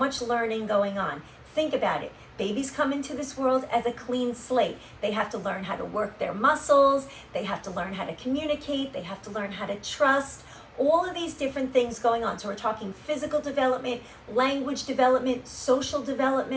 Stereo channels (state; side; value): identical; both; correlation 1.00